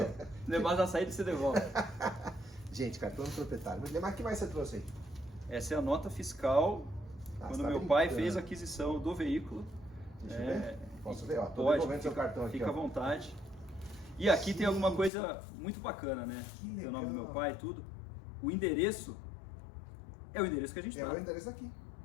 Mas na saída você devolve. Gente, cartão do proprietário. Mas o que mais você trouxe aí? Essa é a nota fiscal quando você tá meu pai brincando. fez a aquisição do veículo. Deixa eu ver. Posso ver? Ó, tô Pode, devolvendo seu cartão aqui. fica à Ó. vontade. E aqui tem alguma coisa muito bacana, né? Que Tem o nome do meu legal. pai e tudo. O endereço é o endereço que a gente É tá. o endereço aqui.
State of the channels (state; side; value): drops out; right; at 15.1 s